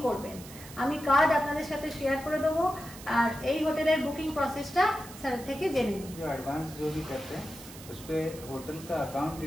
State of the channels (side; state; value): right; noise; hiss, 16 dB below the sound